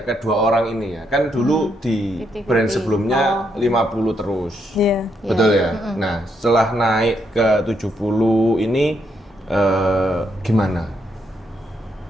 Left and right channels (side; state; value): both; normal; correlation 0.77